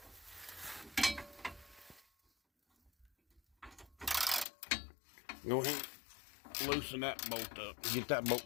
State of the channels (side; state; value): right; drops out; at 4.5 s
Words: go ahead and loosen that bolt up and get that bolt